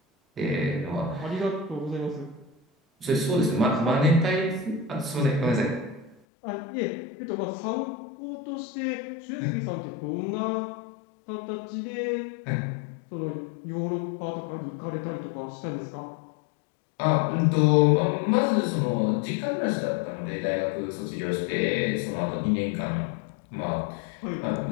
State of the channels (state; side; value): drops out; right; at 6.2 s